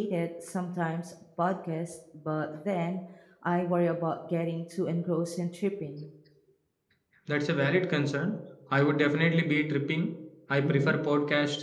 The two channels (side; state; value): both; identical; correlation 1.00